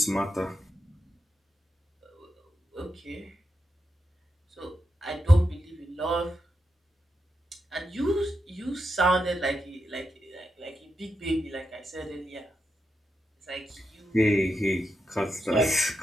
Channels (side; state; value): both; normal; correlation 0.86